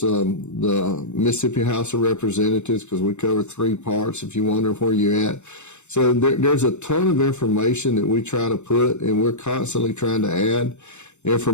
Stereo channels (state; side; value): late; right; 0.83 ms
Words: Mississippi House of Representatives, because we cover 3 parts if you wonder where you're at. So there's a ton of information that we try to put, and we're constantly trying to add